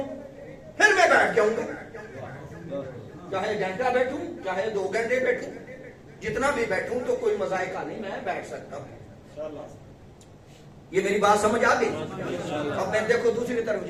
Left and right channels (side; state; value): both; identical; correlation 1.00